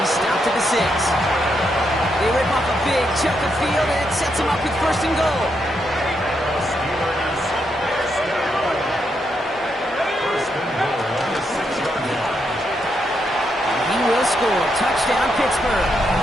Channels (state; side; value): normal; both; correlation 0.80